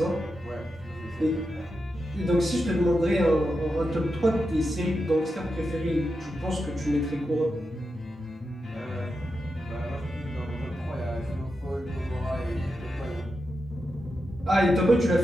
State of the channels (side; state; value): both; normal; correlation 0.88